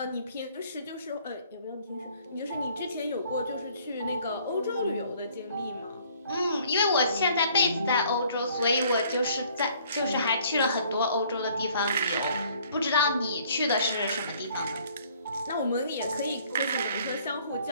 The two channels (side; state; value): both; inverted; correlation -0.59